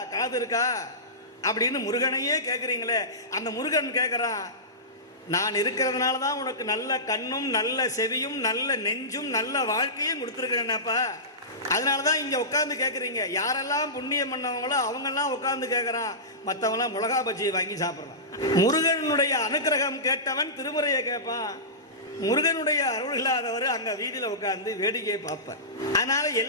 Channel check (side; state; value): both; normal; correlation -0.19